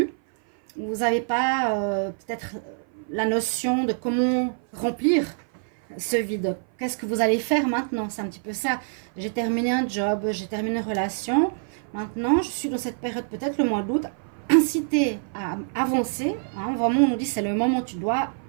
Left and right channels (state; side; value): silent; left; 56 dB below the other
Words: Vous n'avez pas peut-être la notion de comment remplir ce vide. Qu'est-ce que vous allez faire maintenant? C'est un petit peu ça. J'ai terminé un job, j'ai terminé une relation. Maintenant, je suis dans cette période, peut-être le mois d'août, incité à avancer. Hein, vraiment, on nous dit c'est le moment où tu dois